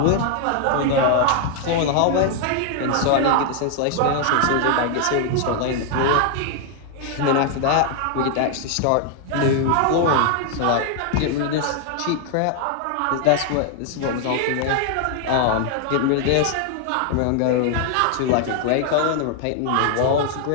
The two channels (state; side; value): different; both; correlation 0.00